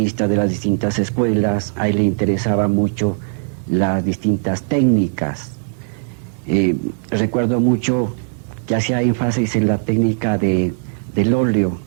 de las distintas escuelas. A él le interesaba mucho las distintas técnicas. Recuerdo mucho que hacía énfasis en la técnica del óleo,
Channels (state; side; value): silent; left; 67 dB below the other